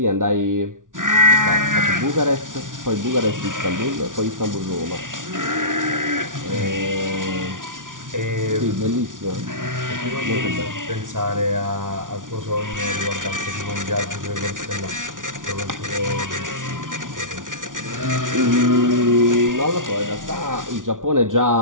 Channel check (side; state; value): left; late; 0.88 ms